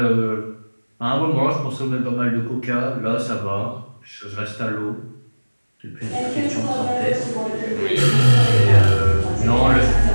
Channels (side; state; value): both; inverted; correlation -1.00